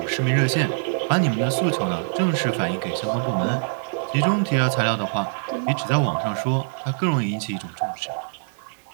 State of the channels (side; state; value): left; silent; digital silence